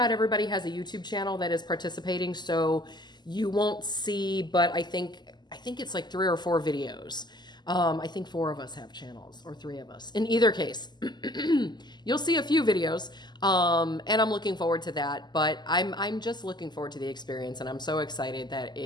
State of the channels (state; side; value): late; right; 0.21 ms